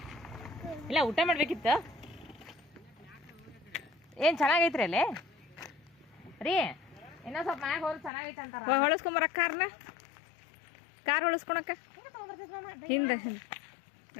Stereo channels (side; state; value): right; drops out; at 8.1 s